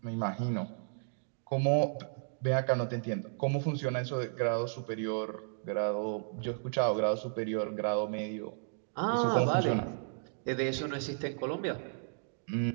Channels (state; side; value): silent; left; digital silence